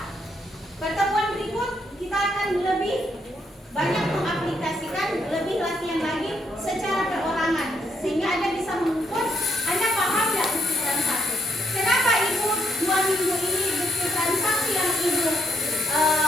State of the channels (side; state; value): both; normal; correlation 0.76